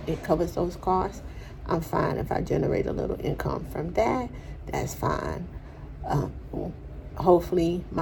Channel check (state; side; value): identical; both; correlation 1.00